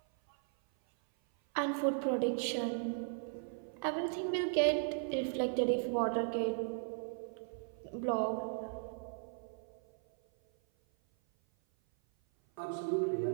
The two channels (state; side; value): silent; left; 53 dB below the other